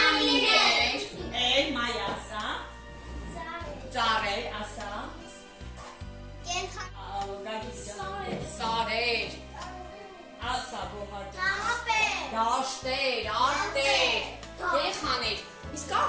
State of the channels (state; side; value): identical; both; correlation 1.00